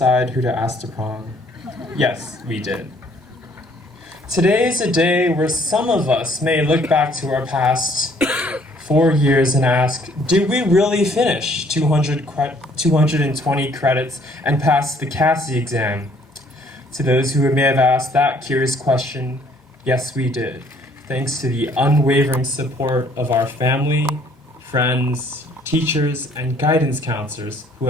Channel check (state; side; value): normal; both; correlation 0.61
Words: who to ask to prom? Yes, we did. Today is a day where some of us may look back to our past 4 years and ask, did we really finish 220 credits and pass the CASI exam? To those who may have asked that curious question, yes, we did, thanks to the unwavering support of our family, friends, teachers, and guidance counselors who